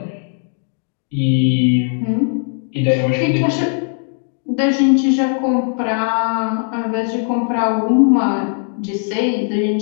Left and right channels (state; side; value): silent; right; 57 dB below the other